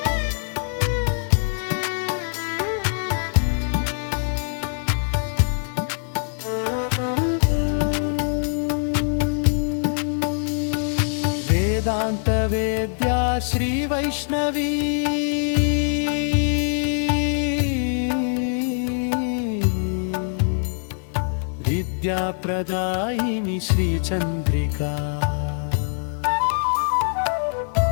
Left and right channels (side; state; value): right; silent; digital silence